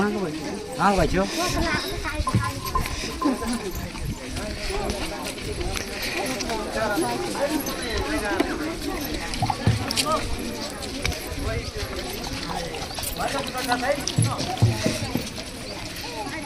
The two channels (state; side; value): identical; both; correlation 1.00